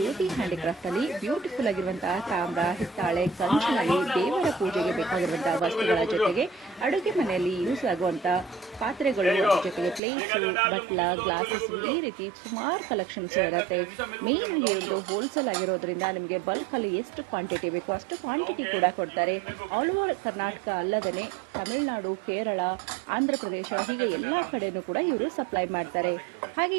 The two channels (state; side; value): drops out; left; at 10.0 s